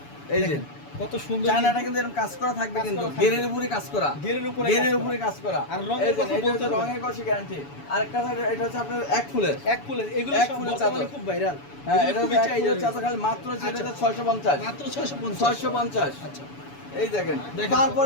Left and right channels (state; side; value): late; right; 7.0 ms